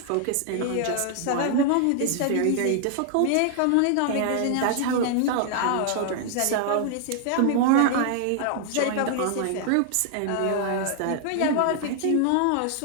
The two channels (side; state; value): both; different; correlation 0.00